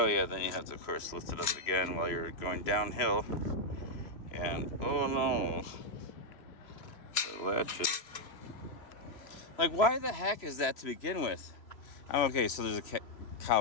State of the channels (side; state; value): right; late; 3.0 ms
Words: yeah, then you have to, of course, lift it up again while you're going downhill. And oh no, the latches. Like, why the heck is that to begin with? I'm okay, so there's a